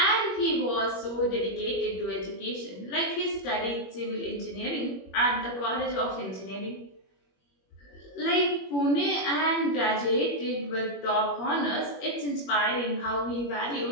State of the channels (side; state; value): right; late; 21 ms